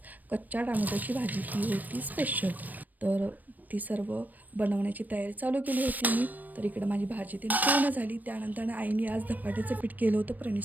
कच्च्या टोमॅटोची भाजी, ही होती स्पेशल. तर ती सर्व बनवण्याची तयारी चालू केली होती मी. तर इकडं माझी भाजी ती पूर्ण झाली. त्यानंतर आईने आज धपाट्याचं पीठ केलं होतं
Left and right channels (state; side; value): late; left; 0.085 ms